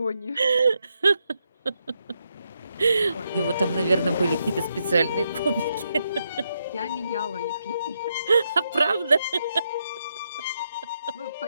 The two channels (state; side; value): inverted; both; correlation -0.82